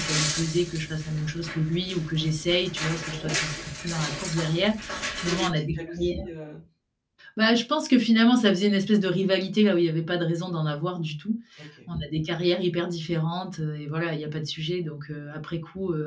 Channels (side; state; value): both; identical; correlation 1.00